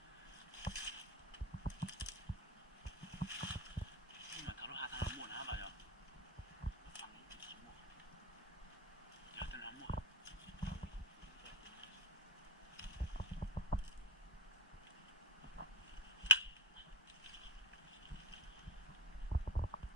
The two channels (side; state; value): both; normal; correlation 0.20